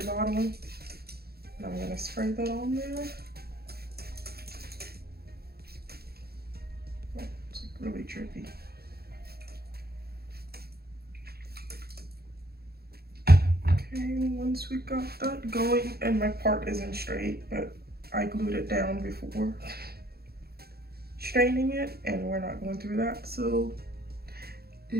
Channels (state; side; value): late; left; 0.46 ms